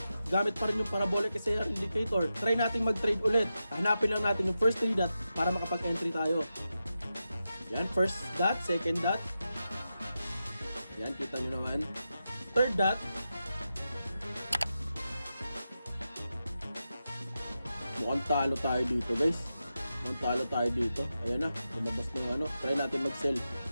Gamit pa rin yung Parabolic SAR indicator. Try natin mag-trade ulit. Hanapin lang natin yung first 3 dot para makapag-entry tayo. Yan, first dot, second dot. Yan, kita nyo naman. Third dot. Mukhang talo tayo dito guys. Mukhang talo tayo dito. Ayan na, lumabas ng ano. Try natin mag-sell.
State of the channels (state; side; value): inverted; both; correlation -0.90